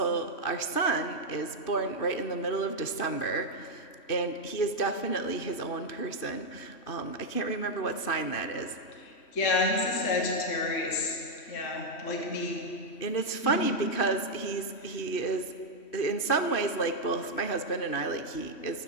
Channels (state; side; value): late; right; 3.1 ms